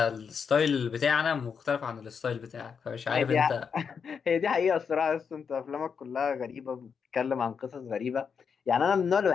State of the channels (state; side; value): quieter; right; 6.4 dB